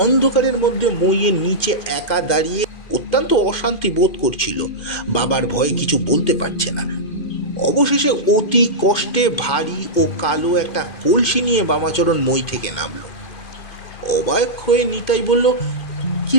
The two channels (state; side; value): late; right; 2.5 ms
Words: অন্ধকারের মধ্যে মইয়ের নিচে একা দাঁড়িয়ে অত্যন্ত অশান্তি বোধ করছিল। বাবার ভয়ে কিছু বলতে পারছে না। অবশেষে অতি কষ্টে ভারী ও কালো একটা কলসি নিয়ে বামাচরণ মই থেকে নামলো। অবাক হয়ে নিতাই বলল, কি